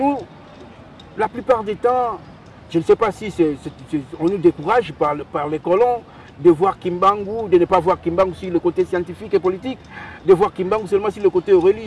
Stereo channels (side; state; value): both; identical; correlation 1.00